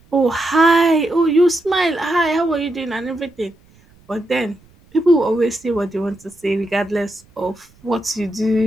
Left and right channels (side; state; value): right; noise; rumble, 30 dB below the sound